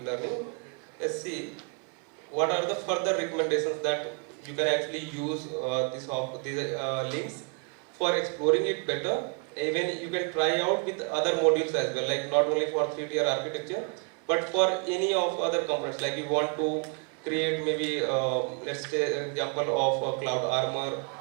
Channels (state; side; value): quieter; left; 34.7 dB